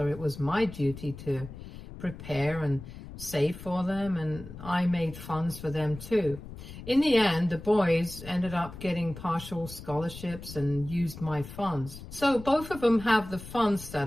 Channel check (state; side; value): noise; left; rumble, 13 dB below the sound